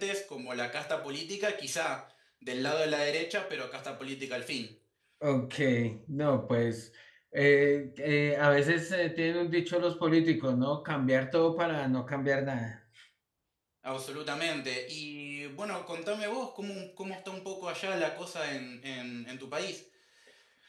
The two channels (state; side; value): identical; both; correlation 1.00